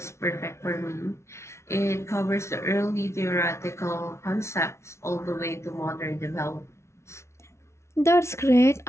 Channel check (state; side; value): late; right; 0.13 ms